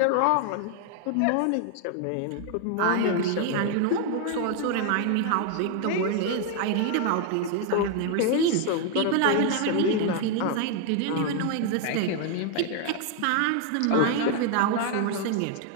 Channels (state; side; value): different; both; correlation 0.00